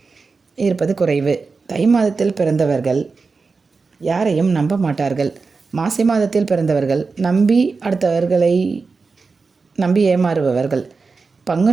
இருப்பது குறைவு. தை மாதத்தில் பிறந்தவர்கள் யாரையும் நம்ப மாட்டார்கள். மாசி மாதத்தில் பிறந்தவர்கள் அடுத்தவர்களை நம்பி ஏமாறுபவர்கள்.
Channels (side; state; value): left; quieter; 4.4 dB